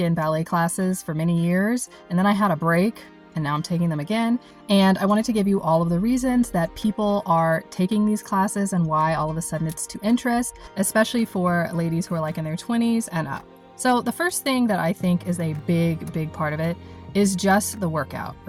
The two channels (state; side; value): identical; both; correlation 1.00